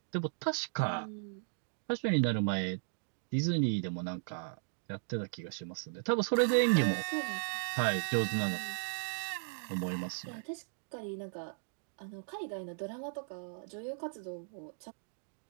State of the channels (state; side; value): silent; left; digital silence